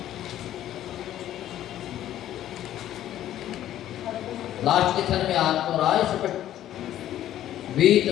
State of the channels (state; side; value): quieter; right; 12.4 dB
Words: लास्ट के क्षण में आत्म राय सपट